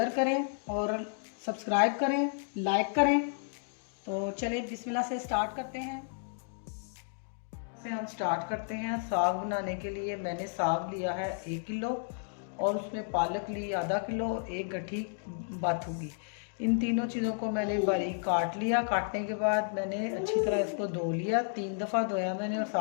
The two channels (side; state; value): right; silent; digital silence